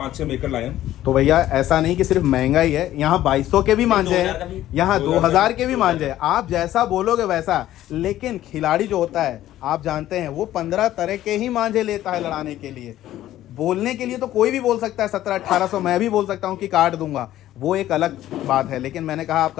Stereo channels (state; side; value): quieter; right; 13.5 dB